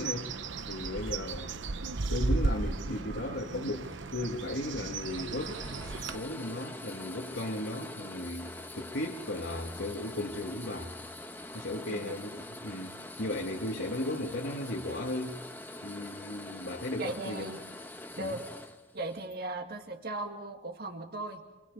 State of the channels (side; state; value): both; normal; correlation 0.44